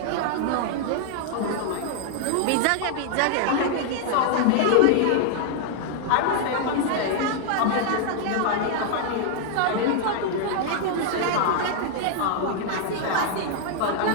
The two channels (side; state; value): both; different; correlation 0.00